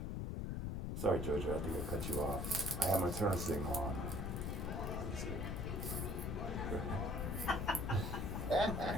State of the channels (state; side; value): noise; left; rumble, 2 dB below the sound